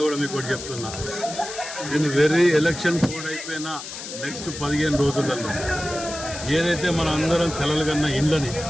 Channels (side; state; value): left; noise; hiss, 10 dB below the sound